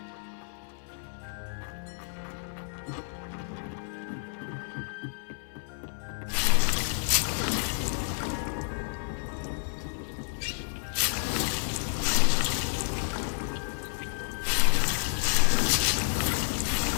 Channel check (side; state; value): right; silent; 58 dB below the other